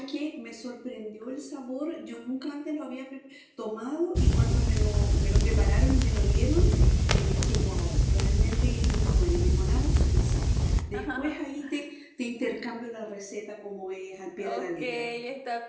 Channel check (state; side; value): identical; both; correlation 1.00